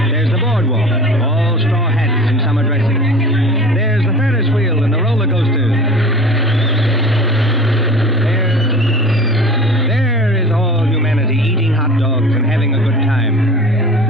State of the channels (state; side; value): normal; both; correlation 0.39